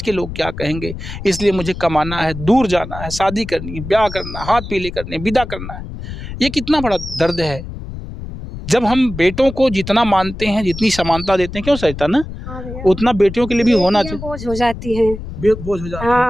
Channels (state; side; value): noise; left; rumble, 10 dB below the sound